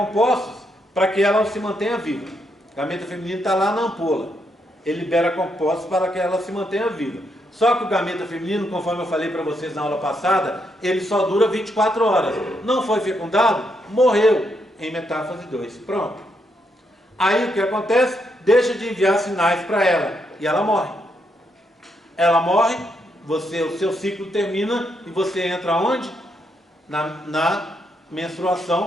para que ela se mantenha viva. O gameta feminino está lá na ampola. Ele libera compostos para que ela se mantenha viva. Só que o gameta feminino, conforme eu falei para vocês na aula passada, ele só dura 24 horas. Não foi fecundado, morreu em metáfase 2. Pronto. Aí o que acontece? Deixa de enviar sinais para ela e ela morre. Ela morre, o seu ciclo termina e você entra onde? Na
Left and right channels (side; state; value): both; normal; correlation 0.78